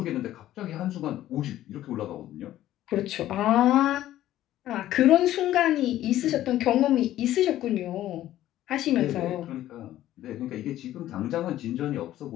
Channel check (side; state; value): right; quieter; 13.5 dB